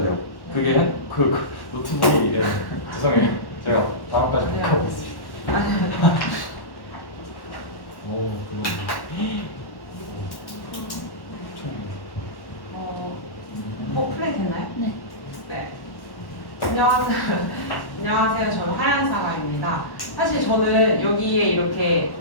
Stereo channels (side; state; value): right; late; 1.1 ms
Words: 돼요. 그게 그 노트북이 죄송해요. 제가 다음까지 꼭 하고 있습니다. 오 플레이 됐나요? 네. 네. 안녕하세요. 안녕하세요. 저는 하얀사과입니다. 사실 저는 여기에 이렇게